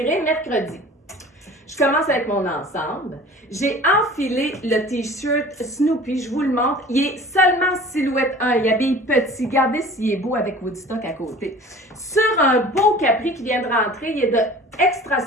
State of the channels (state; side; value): normal; both; correlation 0.43